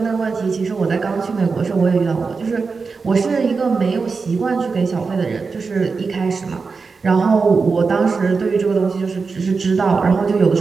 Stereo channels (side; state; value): left; quieter; 4.7 dB